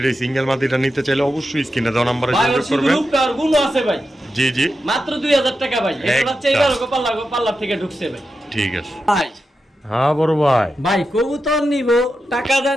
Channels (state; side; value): normal; both; correlation 0.89